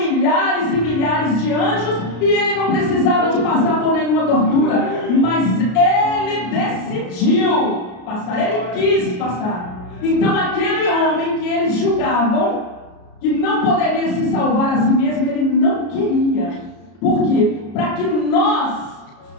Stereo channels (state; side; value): late; right; 33 ms